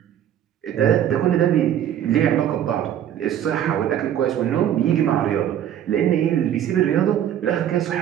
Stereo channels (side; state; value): left; quieter; 10.5 dB